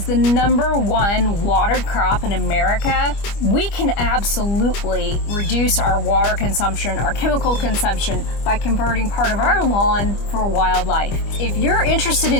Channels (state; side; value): late; right; 25 ms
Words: the #1 watered crop in America? We can absolutely reduce our water consumption, our chemical consumption, by converting part of our lawn for wildlife. If you're interested